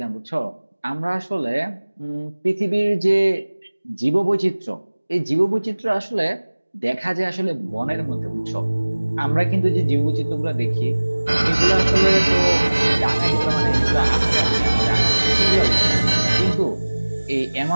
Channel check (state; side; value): inverted; both; correlation -1.00